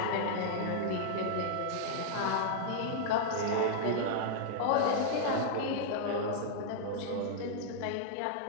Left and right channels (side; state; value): both; different; correlation -0.01